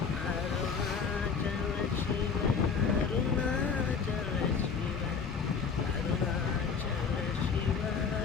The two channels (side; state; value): right; quieter; 5.7 dB